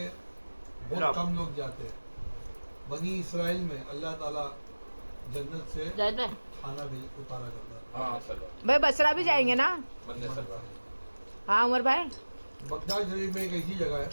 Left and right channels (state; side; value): inverted; both; correlation -1.00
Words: बहुत कम लोग जाते हैं। बनी इसराइल में अल्लाह ताला जन्नत से खाना भी उतारा करता है। हाँ सल्लल्लाहु भाई बसरा भी जाएंगे ना? बंदे सल्लल्लाहु। हाँ उमर भाई। बगदाद शरीफ में एक ऐसी जगह है,